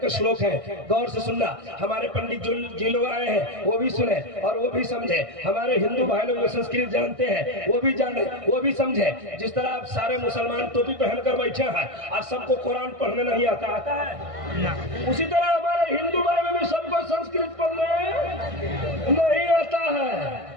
श्लोक है, गौर से सुनना। हमारे पंडित जी लोग आए हैं वो भी सुने और वो भी समझे, हमारे हिंदू भाई लोग जो संस्कृत जानते हैं वो भी जाने, वो भी समझे। जिस तरह आप सारे मुसलमान टोपी पहनकर बैठे हैं और सबको कुरान पढ़ने नहीं आता, आता है, उसी तरह हमारे हिंदू भाई में भी सबको संस्कृत पढ़ने नहीं आता है।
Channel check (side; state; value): left; late; 1.6 ms